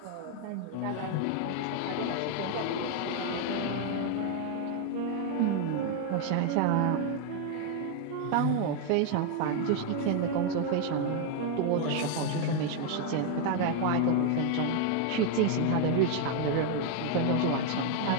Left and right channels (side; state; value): both; different; correlation 0.01